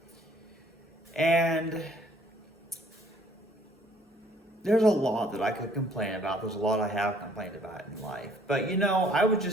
and there's a lot that I could complain about. There's a lot I have complained about in life. But I was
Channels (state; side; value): normal; both; correlation 0.60